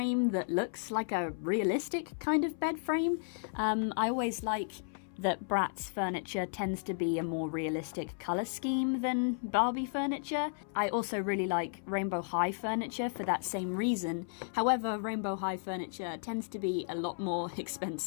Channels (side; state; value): right; silent; 55 dB below the other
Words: that looks like a realistic kind of bed frame. I always like that Bratz furniture tends to be a more realistic colour scheme than Barbie furniture. I also really like Rainbow High furniture for that same reason. However, Rainbow High furniture tends to be a lot more